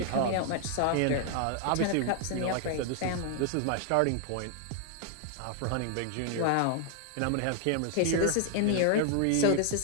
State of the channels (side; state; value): both; different; correlation 0.00